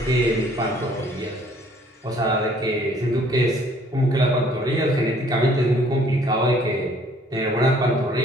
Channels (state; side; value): normal; both; correlation 0.59